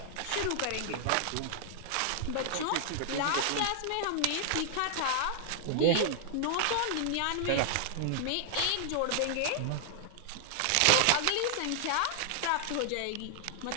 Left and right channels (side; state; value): both; different; correlation 0.00